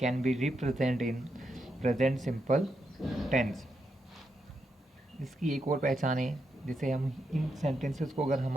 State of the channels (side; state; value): both; normal; correlation 0.83